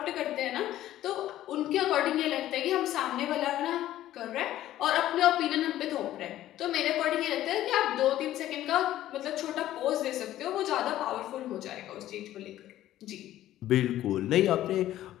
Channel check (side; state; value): right; quieter; 13.5 dB